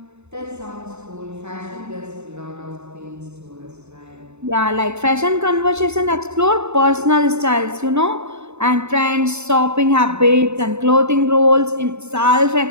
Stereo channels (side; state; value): left; late; 0.82 ms